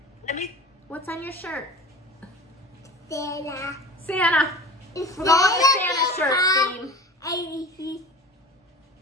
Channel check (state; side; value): normal; both; correlation 0.38